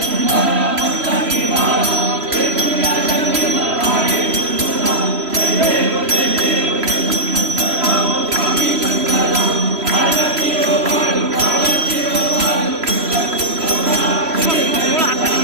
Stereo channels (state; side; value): late; left; 3.0 ms